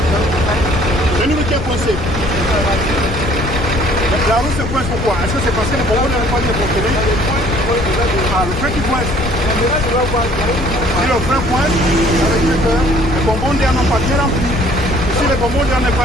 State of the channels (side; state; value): left; noise; rumble, 5 dB below the sound